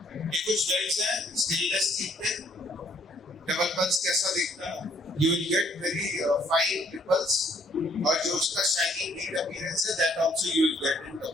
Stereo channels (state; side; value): normal; both; correlation 0.65